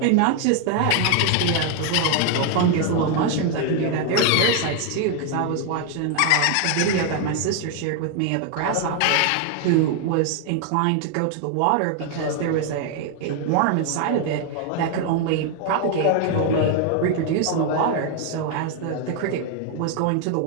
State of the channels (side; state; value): both; different; correlation 0.00